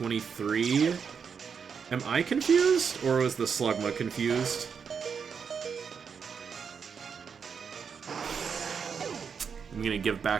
Am I confused? Or was the Slugma confused? I'm gonna give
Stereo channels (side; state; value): left; quieter; 6.4 dB